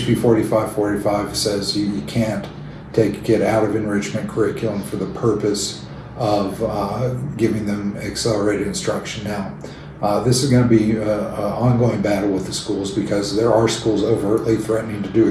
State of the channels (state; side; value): identical; both; correlation 1.00